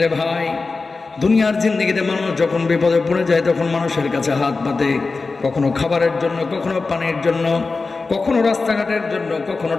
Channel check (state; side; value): quieter; right; 4.0 dB